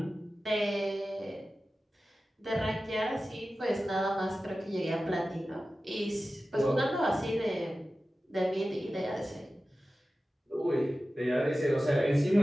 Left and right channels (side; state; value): both; normal; correlation 0.95